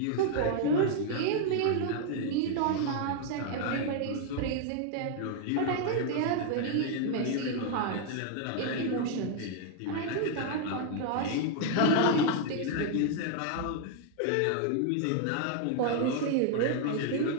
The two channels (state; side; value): different; both; correlation 0.00